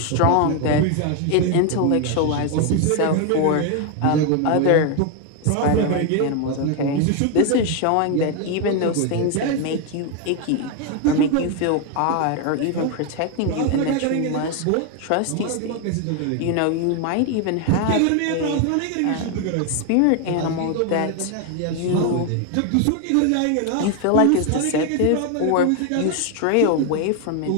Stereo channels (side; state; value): both; different; correlation 0.01